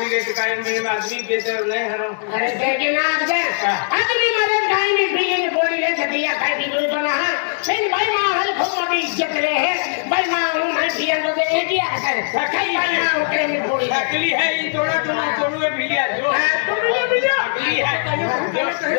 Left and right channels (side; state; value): right; silent; digital silence